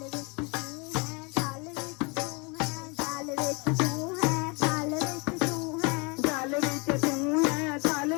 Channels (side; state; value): right; quieter; 30.6 dB